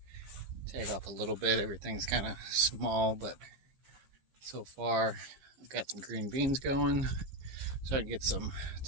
take off a little bit. Everything's kind of small, but so far I've got some green beans going. Starting to get some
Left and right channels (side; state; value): left; late; 15 ms